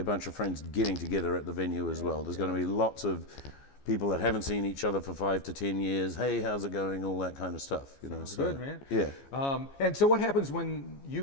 bunch of friends getting together at the venue as well. There's going to be lots of people that haven't seen each other for 5 to 10 years. Hey, how's it going? All that kind of stuff. Sounds good, man. Yeah. And so, what happens when you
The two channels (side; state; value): right; late; 15 ms